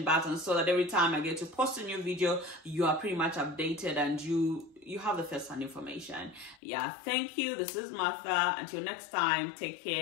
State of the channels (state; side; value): drops out; right; at 6.6 s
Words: button so that every time I get to post a new video, you are pretty much updated and you have the first-hand information. Yeah, thank you. This is Martha. Until next time, take